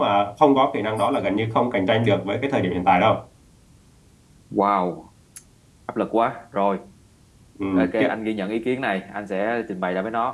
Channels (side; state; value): both; identical; correlation 1.00